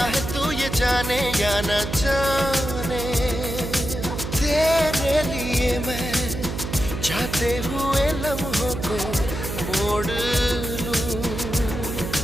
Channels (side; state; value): right; noise; hum, 6 dB below the sound